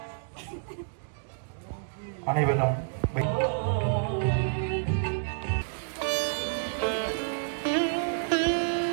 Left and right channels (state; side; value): silent; left; digital silence